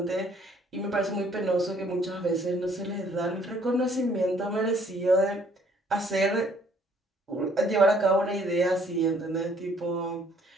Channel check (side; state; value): both; normal; correlation 0.61